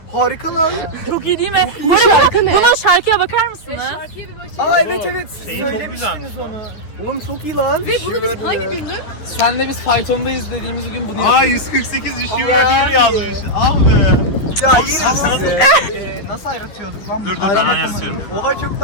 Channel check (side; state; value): right; late; 9.4 ms